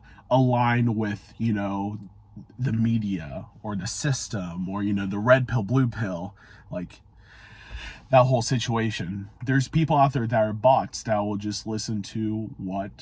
align with, the media or the system, or, the red pill, blue pill, like that whole situation. There's people out there that are bots that will just listen to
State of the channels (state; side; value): identical; both; correlation 1.00